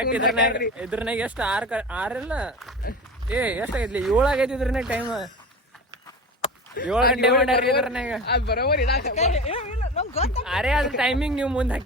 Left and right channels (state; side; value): normal; both; correlation 0.31